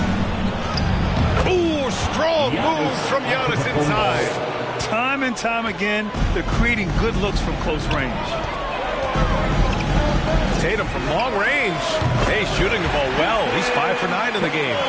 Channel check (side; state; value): both; identical; correlation 1.00